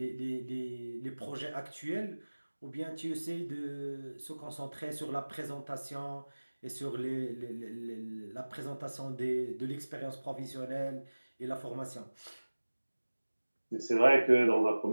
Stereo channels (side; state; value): both; inverted; correlation -1.00